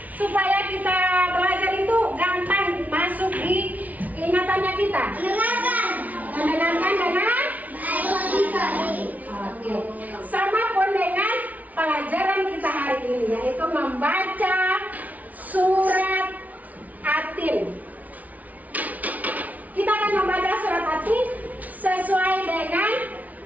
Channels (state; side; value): late; left; 0.074 ms